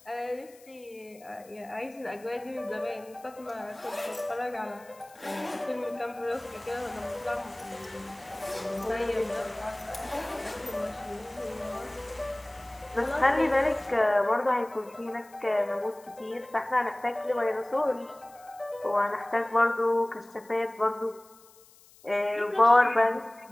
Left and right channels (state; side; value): noise; left; hiss, 25 dB below the sound